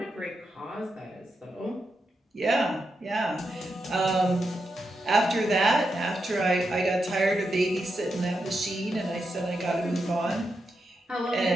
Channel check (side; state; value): both; normal; correlation 0.86